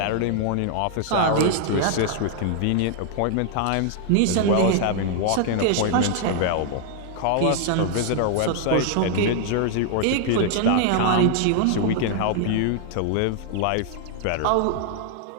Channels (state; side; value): different; both; correlation 0.00